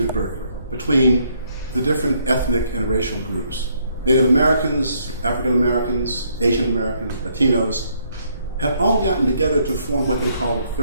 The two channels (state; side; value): inverted; both; correlation -0.70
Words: in Berkeley between the different ethnic and racial groups. Native Americans, African Americans, Asian Americans, Latinos had all gotten together to form what they call the